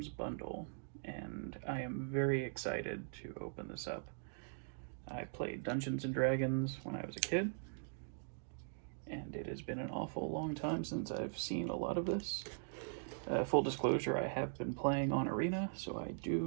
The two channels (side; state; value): left; silent; digital silence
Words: bundle, and I am very excited to open this up. I played Dungeons & Dragons when I was a kid, and it has been an awful long time since I've seen a lot of this. Full disclosure, I have been playing on Arena, so I